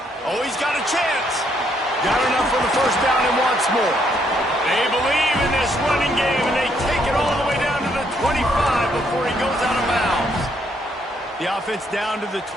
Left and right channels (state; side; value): normal; both; correlation 0.71